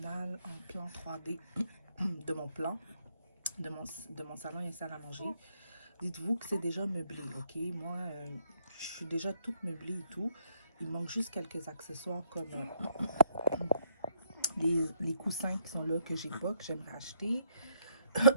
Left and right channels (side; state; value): both; inverted; correlation -0.70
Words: en plan 3D de mon plan, de mon salon et salle à manger. Dites-vous que c'est déjà meublé, ok? Moi, je suis déjà toute meublée et tout. Il manque juste quelques accessoires comme les coussins qui sont là que j'ai pas, que j'aimerais acheter.